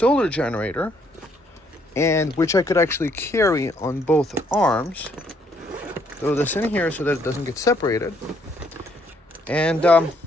generator, and which I could actually carry on both arms. Throw this in here so that it doesn't get separated, and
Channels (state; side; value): normal; both; correlation 0.68